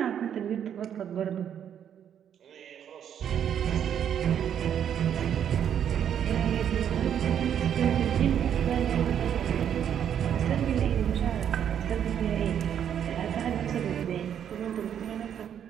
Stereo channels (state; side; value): quieter; left; 9.1 dB